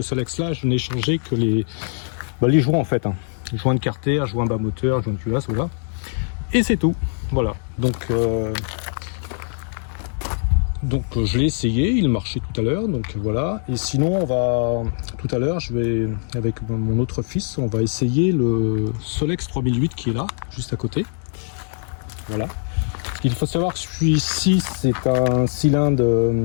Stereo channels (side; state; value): right; silent; 58 dB below the other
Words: Solex là, je n'ai changé que les joints en fait. Joint de carter, joint bas moteur, joint de culasse, voilà. Et c'est tout. Voilà. Donc je l'ai essayé, il marchait tout à l'heure, donc voilà. Et sinon, tout à l'heure, je vais, avec mon autre fils, on va essayer le Solex 3008 qui est là, juste à côté. Voilà. Il faut savoir que celui-ci, c'est un cylindre